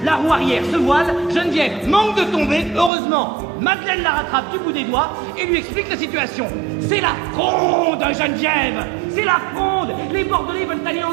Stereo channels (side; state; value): left; drops out; at 2.9 s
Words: la roue arrière se voile, Geneviève manque de tomber, heureusement. Madeleine la rattrape du bout des doigts et lui explique la situation. C'est la fronde, Geneviève! C'est la fronde! Les Bordelais veulent